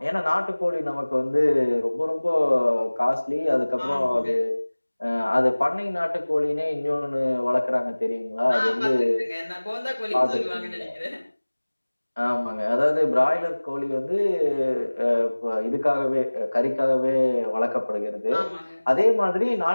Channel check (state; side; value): inverted; both; correlation -1.00